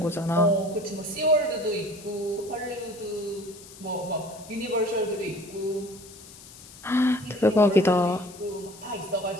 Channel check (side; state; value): left; noise; hiss, 19 dB below the sound